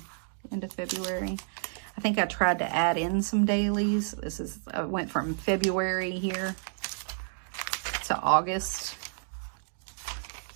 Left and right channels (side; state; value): left; silent; digital silence